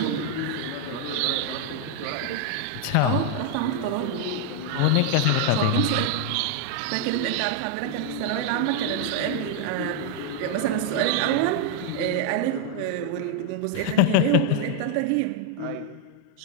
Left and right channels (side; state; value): both; different; correlation 0.00